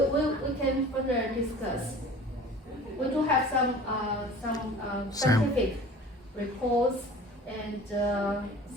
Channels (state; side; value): normal; both; correlation 0.43